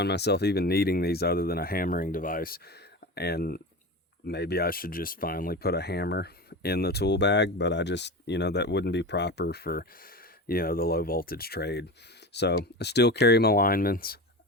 myself even needing these other than a hammering device. And maybe I should just finally put a hammer in the tool bag, but I just, you know, that wouldn't be proper for, you know, the low voltage trade. So I still carry my linemans.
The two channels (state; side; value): normal; both; correlation 0.27